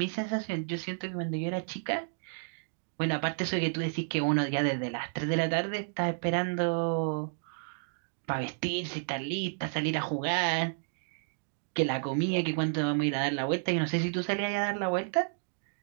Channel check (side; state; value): left; silent; digital silence